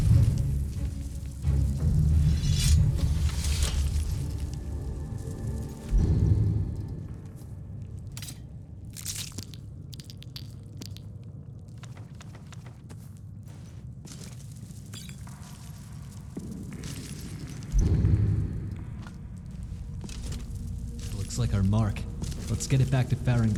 Looks like our mark. Let's get it back to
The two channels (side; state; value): both; identical; correlation 1.00